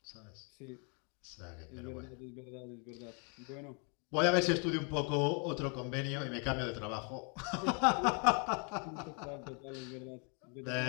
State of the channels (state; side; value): quieter; right; 37.3 dB